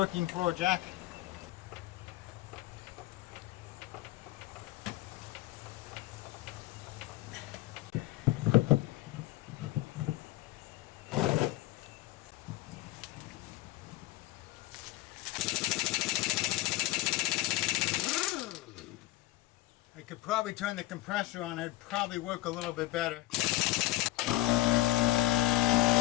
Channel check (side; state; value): right; quieter; 17.7 dB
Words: floor jack. I could probably turn the compressor on, it'd probably work a little bit better.